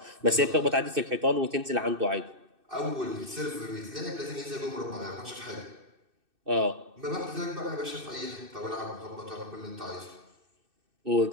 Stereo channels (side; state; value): left; late; 2.6 ms